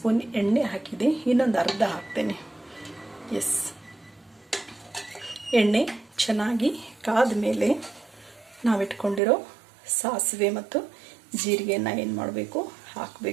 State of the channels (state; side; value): drops out; left; at 9.2 s